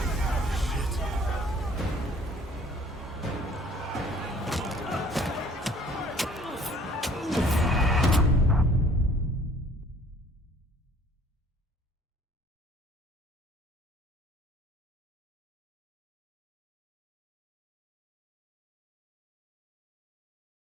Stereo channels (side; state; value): both; normal; correlation 0.55